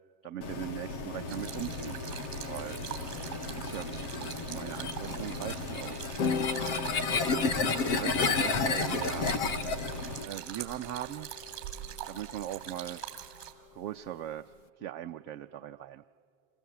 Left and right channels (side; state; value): right; late; 7.5 ms